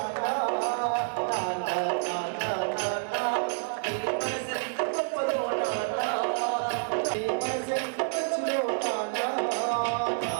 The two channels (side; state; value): left; silent; digital silence